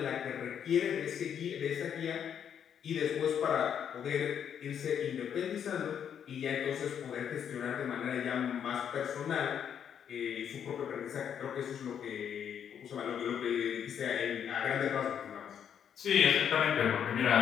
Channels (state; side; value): quieter; right; 8.5 dB